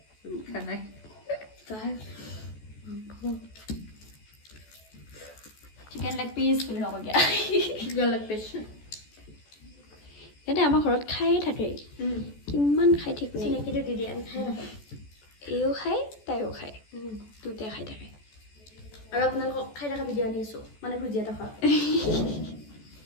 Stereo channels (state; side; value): late; right; 14 ms